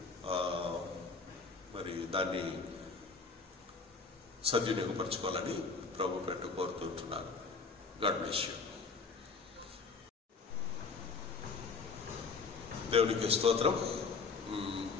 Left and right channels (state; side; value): quieter; right; 4.7 dB